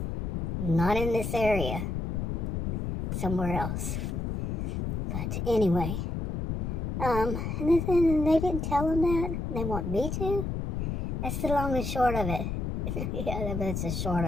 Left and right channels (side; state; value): left; noise; rumble, 2 dB below the sound